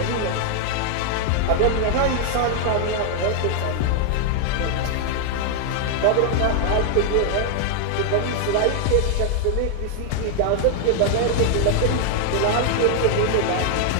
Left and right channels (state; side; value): different; both; correlation 0.00